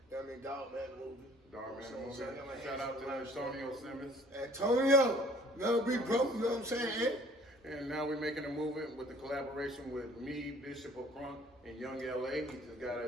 what I mean? Dog Man movie. Dog Man So, movie. so I got my Shout hands out on to a lot of Antonio stuff. Simmons. Antonio, another big bro. You know what I'm saying? And now we're making a movie with the collaboration with me, Bishop of Crunk, and Young LA. He just got out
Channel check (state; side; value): normal; both; correlation 0.54